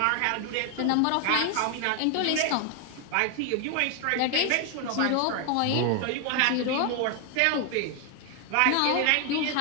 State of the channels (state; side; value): different; both; correlation 0.01